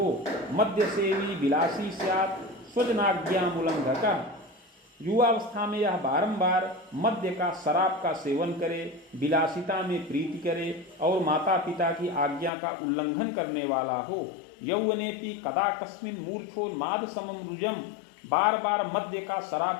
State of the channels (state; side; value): drops out; right; at 12.5 s